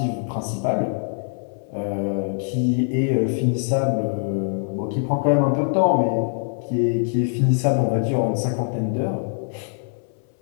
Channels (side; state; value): right; silent; 60 dB below the other